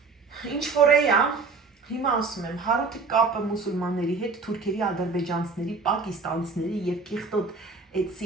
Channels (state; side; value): quieter; left; 4.3 dB